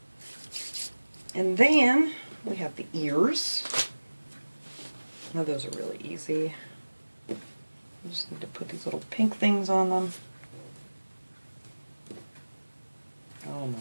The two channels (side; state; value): both; inverted; correlation -1.00